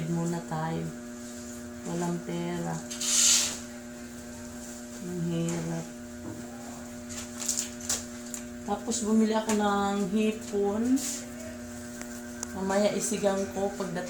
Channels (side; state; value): both; identical; correlation 1.00